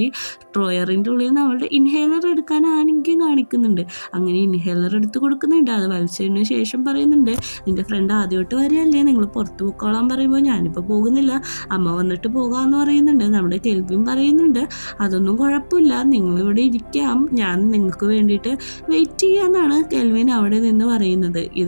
ഡ്രോയറിൻ്റെ ഉള്ളിൽ നിന്ന് അവളുടെ ഇൻഹേലർ എടുക്കാൻ ആണെങ്കിലും കാണിക്കുന്നുണ്ട്. അങ്ങനെ ഇൻഹേലർ എടുത്ത് കൊടുക്കുന്നുണ്ട്. അത് വലിച്ചതിന് ശേഷം പറയുന്നുണ്ട്, നിൻ്റെ ഫ്രണ്ട് ആദ്യമായിട്ട് വരികയല്ലേ, നിങ്ങൾ പുറത്ത് പോയിക്കോളാൻ പറയുമ്പോൾ ഞാനിപ്പോൾ പോകുന്നില്ല, അമ്മ വന്നിട്ട് പോകാമെന്ന് പറയുന്നുണ്ട്. നമ്മുടെ കെൽവിൻ പറയുന്നുണ്ട് അതൊന്നും കുഴപ്പമില്ല, നിങ്ങളിവിടെ ഇരിക്കാം, ഞാൻ നിങ്ങൾക്ക് വേണ്ടിയിട്ട് വെയിറ്റ് ചെയ്യാമെന്നാണ് കെൽവിൻ അവിടെ നിന്ന് പറയുന്നത്.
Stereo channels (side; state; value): both; inverted; correlation -1.00